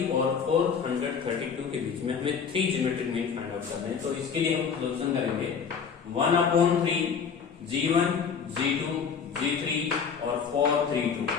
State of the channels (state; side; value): quieter; right; 6.5 dB